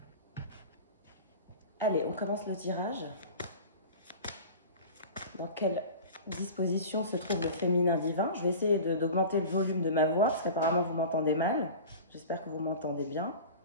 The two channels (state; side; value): inverted; both; correlation -0.36